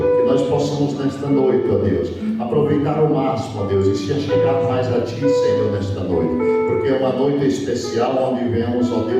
que nós possamos nesta noite, ó Deus, aproveitar ao máximo, ó Deus, e se chegar mais a ti, Senhor, nesta noite, porque é uma noite especial onde viemos, ó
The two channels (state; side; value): identical; both; correlation 1.00